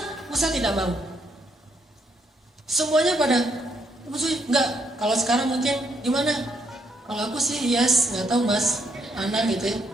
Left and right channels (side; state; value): both; normal; correlation 0.73